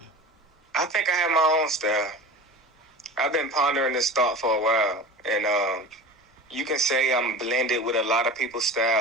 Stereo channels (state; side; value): normal; both; correlation 0.33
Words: I think I have my own style. I've been pondering this thought for a while. And you can say I'm blended with a lot of people's